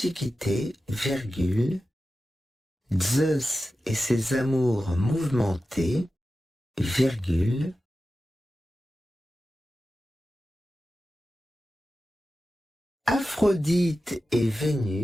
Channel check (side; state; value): both; normal; correlation 0.93